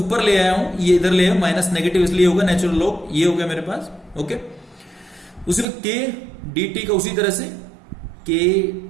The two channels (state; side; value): drops out; left; at 5.7 s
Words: ले आया हूं, ये इधर ले आया, माइनस नेगेटिव इसलिए होगा, नेचुरल लॉग ये हो गया मेरे पास। ओके, उसी में k dt का उसी तरह से k